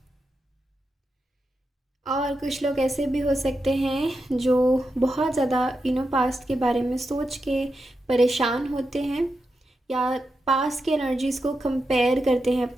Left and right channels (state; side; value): normal; both; correlation 0.87